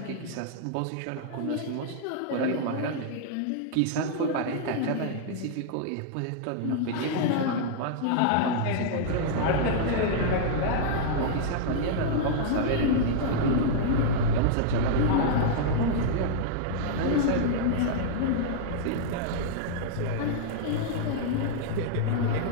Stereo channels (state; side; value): different; both; correlation -0.02